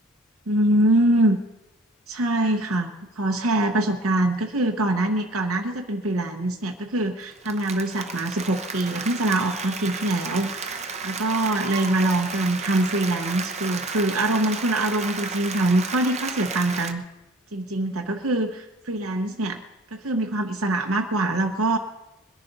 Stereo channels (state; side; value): normal; both; correlation 0.51